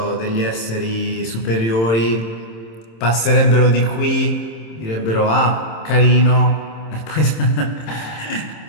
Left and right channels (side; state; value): right; late; 27 ms